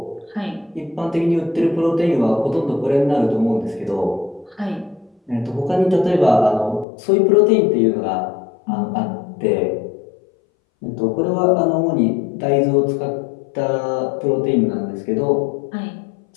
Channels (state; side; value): drops out; right; at 6.9 s